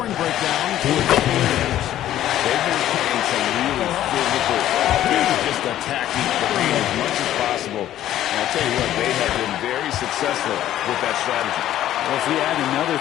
breakdown for the Cavaliers. They've been playing some really physical, just attacking the paint as much as possible. And I'll tell you what, they have been very successful with that strategy. Well, if we add another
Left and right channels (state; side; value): quieter; right; 12.5 dB